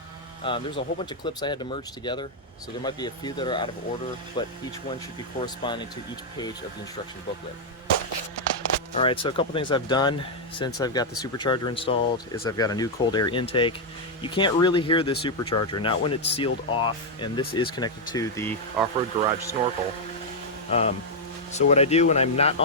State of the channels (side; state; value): both; normal; correlation -0.02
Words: There's a whole bunch of clips I had to merge together, so there might be a few that are out of order, but each one should be corresponding to each page of the instruction booklet. Alright, so a couple things I've done since I've got the supercharger installed is I've got a new cold air intake. You can't really hear the supercharger, not when it's sealed off, and this is connected to the off-road garage snorkel. So what I do when I'm not